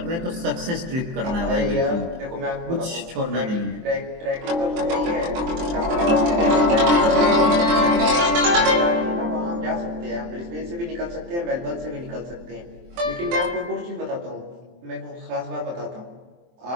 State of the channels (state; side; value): late; left; 23 ms